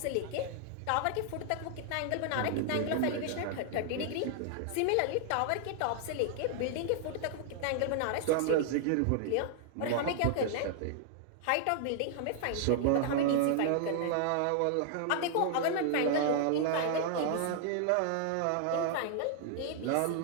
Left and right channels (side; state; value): both; different; correlation -0.01